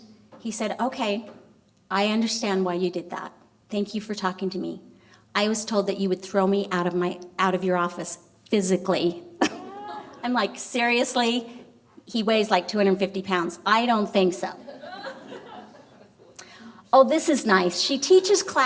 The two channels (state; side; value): identical; both; correlation 1.00